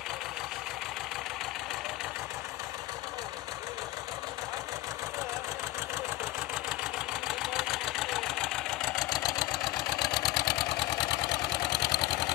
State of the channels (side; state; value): right; quieter; 17.8 dB